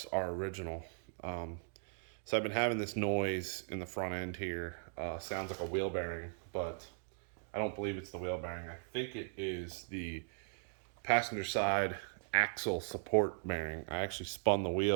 are original. So I've been having this noise in the front end here. Sounds like a wheel bearing, but I don't believe it's the wheel bearing. I think it is the passenger side axle support bearing. I actually spun the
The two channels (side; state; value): left; silent; digital silence